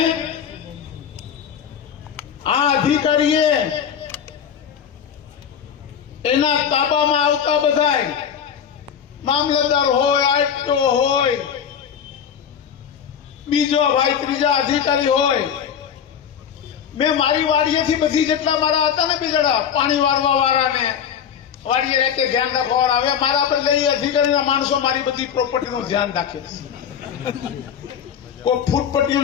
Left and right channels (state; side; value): quieter; right; 8.2 dB